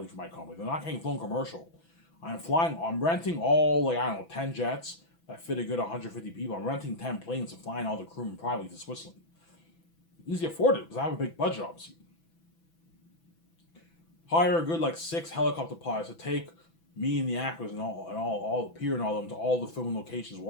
for my company. They're not getting flown commercial. I'm renting all, like, I don't know, 10 jets that fit a good 150 people. I'm renting 10 planes and flying all the crewmen privately to Switzerland. Easy afford it because I have a big budget, obviously. Hire a good like 6 helicopter pilots to take me and the actors and all the Peter and all of them to all the filming locations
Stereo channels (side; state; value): right; late; 6.0 ms